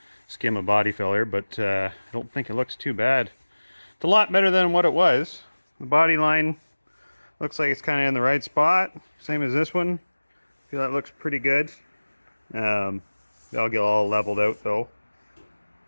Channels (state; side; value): inverted; both; correlation -1.00